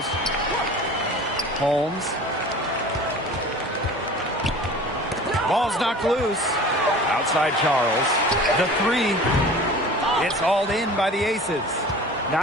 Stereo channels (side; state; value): both; normal; correlation 0.41